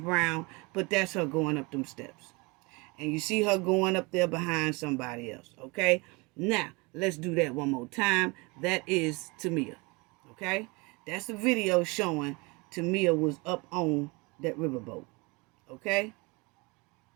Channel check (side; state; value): left; quieter; 27.1 dB